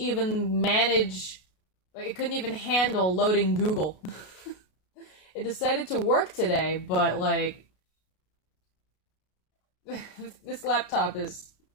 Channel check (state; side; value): late; right; 33 ms